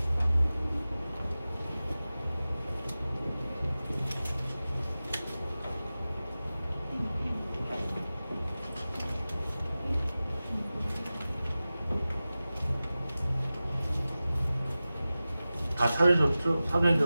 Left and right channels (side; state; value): both; inverted; correlation -0.96